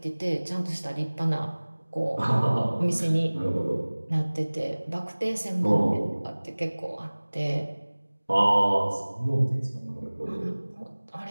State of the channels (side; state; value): both; inverted; correlation -1.00